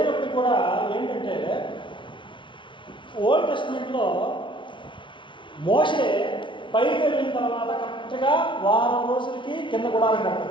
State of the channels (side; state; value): right; late; 0.24 ms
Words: కూడా ఏంటంటే ఓల్డ్ టెస్ట్మెంట్లో మోషే పైకి వెళ్ళిన తర్వాత కరెక్ట్గా వారం రోజులకి కింద గుడారం